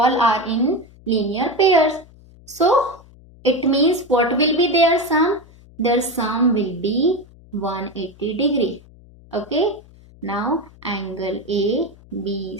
in linear pairs. So it means what will be their sum? Their sum will be 180 degree. Okay. Now angle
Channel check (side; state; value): left; noise; hum, 24 dB below the sound